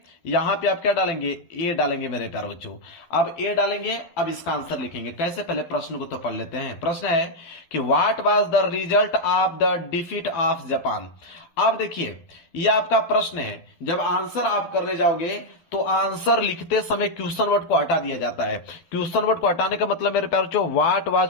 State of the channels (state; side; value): late; right; 12 ms